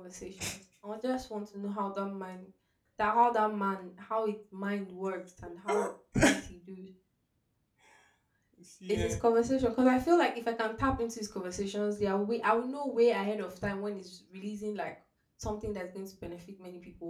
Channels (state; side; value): identical; both; correlation 1.00